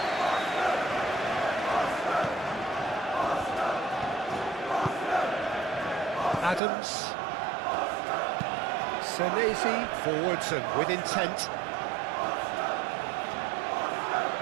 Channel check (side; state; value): left; drops out; at 6.6 s